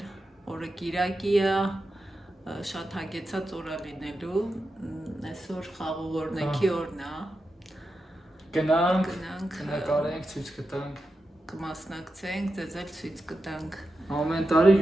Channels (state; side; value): normal; both; correlation 0.90